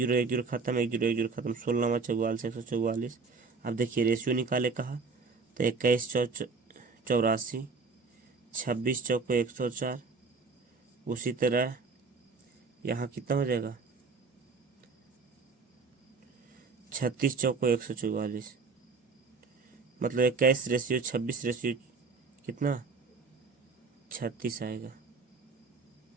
0 खत्म, 1 0 खत्म, 16 44 144। अब देखिए रेशियो निकाले कहा, तो 21 चौ 84, 26 चौको 104। उसी तरह यहाँ कितना हो जाएगा, 36 चौको 144, मतलब 21:26 कितना 36 आएगा।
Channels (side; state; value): left; quieter; 4.5 dB